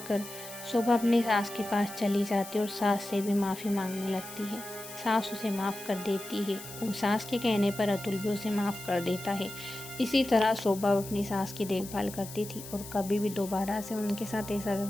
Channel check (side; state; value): left; noise; hiss, 13 dB below the sound